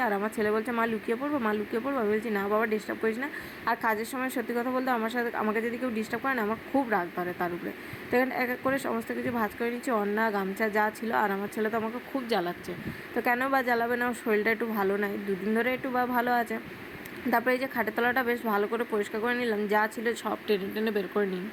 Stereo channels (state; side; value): identical; both; correlation 1.00